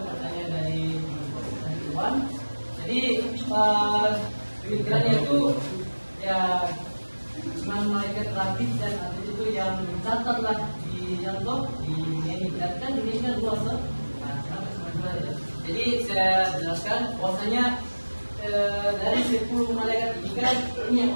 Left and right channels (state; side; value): inverted; both; correlation -1.00